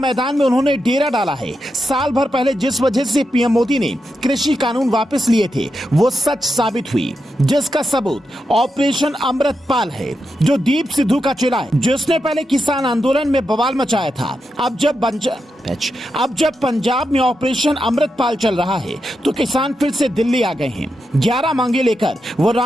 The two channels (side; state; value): both; normal; correlation 0.87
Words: में उन्होंने डेरा डाला है। साल भर पहले जिस वजह से पीएम मोदी ने कृषि कानून वापस लिए थे, वो सच साबित हुई, जिसका सबूत ऑपरेशन अमृतपाल है, जो दीप सिद्धू का चेला है, जिसने पहले किसान आंदोलन में बवाल मचाया था। अब जब पंजाब में ऑपरेशन अमृतपाल चल रहा है, तो किसान फिर से दिल्ली आ गए हैं। 11 मांगे लेकर वो